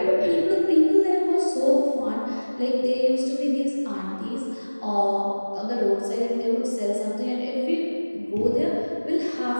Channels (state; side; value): inverted; both; correlation -1.00